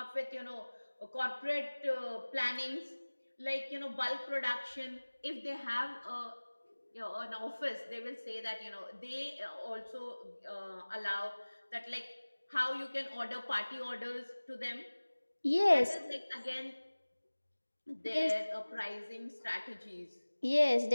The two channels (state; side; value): inverted; both; correlation -1.00